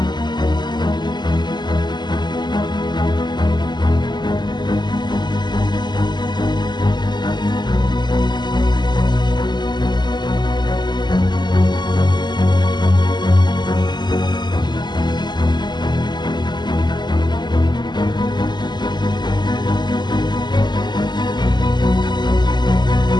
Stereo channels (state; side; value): late; right; 0.21 ms